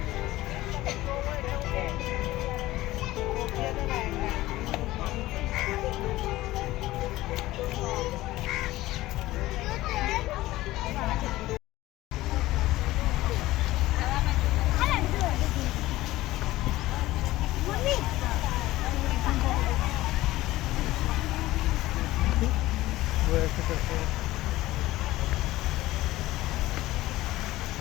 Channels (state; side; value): quieter; right; 17.1 dB